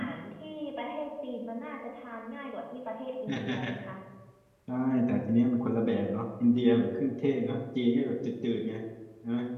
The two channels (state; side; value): identical; both; correlation 1.00